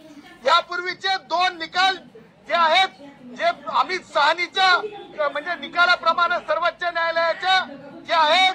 यापूर्वीचे 2 निकाल जे आहेत, जे आम्ही साहनीच्या म्हणजे निकालाप्रमाणे सर्वोच्च न्यायालयाच्या जे आहे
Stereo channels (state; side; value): identical; both; correlation 1.00